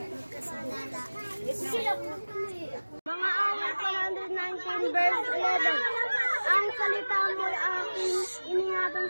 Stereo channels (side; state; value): both; inverted; correlation -1.00